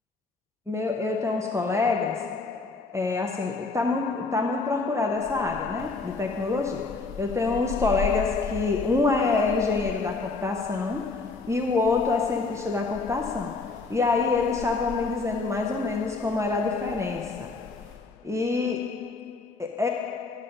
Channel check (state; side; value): quieter; right; 3.8 dB